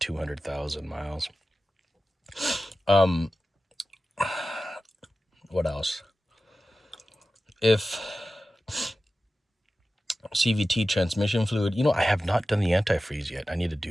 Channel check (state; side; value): normal; both; correlation 0.95